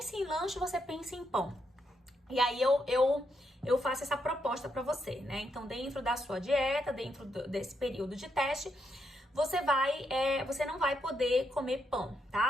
em lanche, você pensa em pão. E aí, eu faço essa proposta pra você, né? Então, dentro da sua dieta, dentro desse período de teste, você não vai poder comer pão,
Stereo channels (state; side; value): normal; both; correlation 0.80